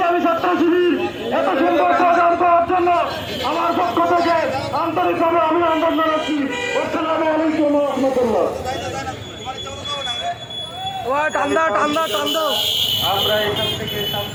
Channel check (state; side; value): identical; both; correlation 1.00